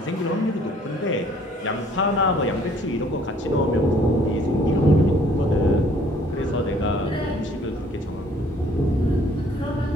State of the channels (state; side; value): normal; both; correlation 0.59